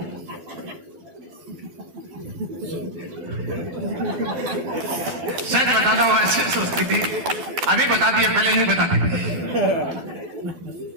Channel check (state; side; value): late; left; 12 ms